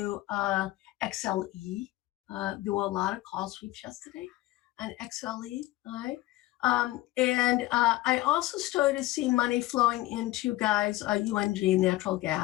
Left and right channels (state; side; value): quieter; right; 17.5 dB